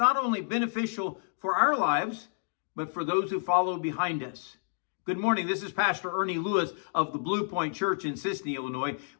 only beneficial for our lives, but for those who follow behind us. Good morning. This is Pastor Ernie Lewis of the Blue Point Church in Sisney, Illinois,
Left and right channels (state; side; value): silent; right; digital silence